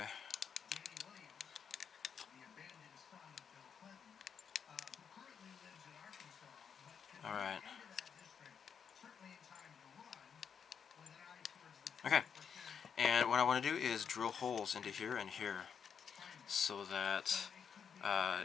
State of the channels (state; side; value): quieter; right; 7.1 dB